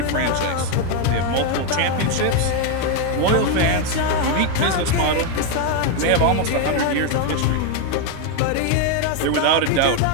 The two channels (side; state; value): both; different; correlation 0.01